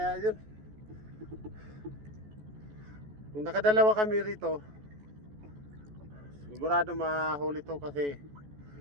yun. Kung nakadalawa kami rito, sigurado mahuli to kasi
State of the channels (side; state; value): left; late; 14 ms